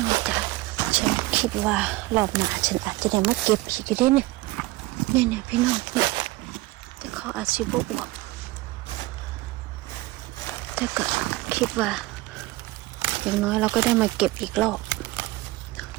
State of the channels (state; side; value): quieter; left; 19.5 dB